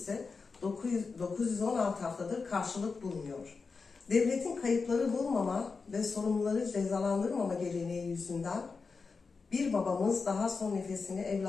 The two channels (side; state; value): right; quieter; 4.7 dB